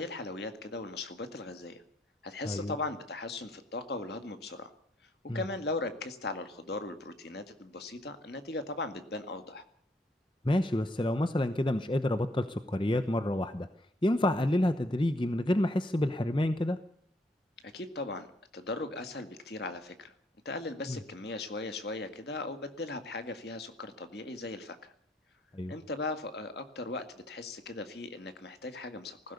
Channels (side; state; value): both; normal; correlation 0.69